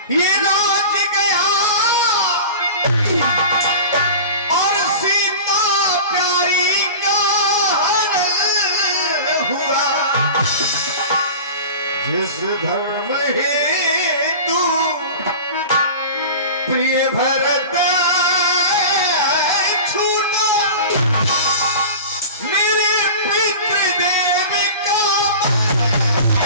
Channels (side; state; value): both; inverted; correlation -0.34